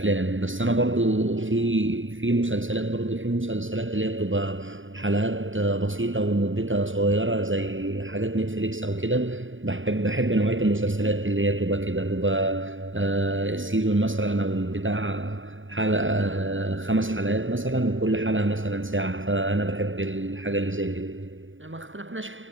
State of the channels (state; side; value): late; left; 0.57 ms